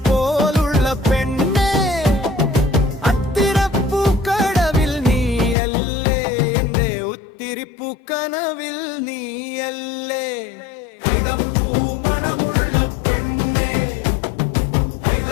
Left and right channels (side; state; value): right; drops out; at 5.6 s